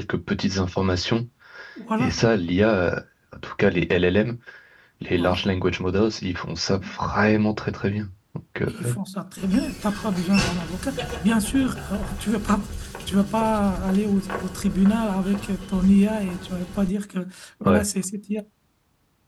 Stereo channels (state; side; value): identical; both; correlation 1.00